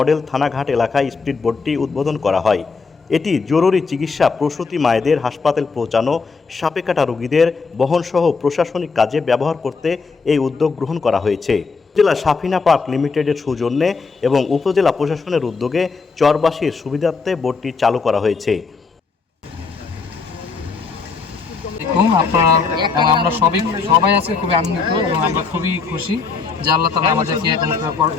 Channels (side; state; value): right; quieter; 4.8 dB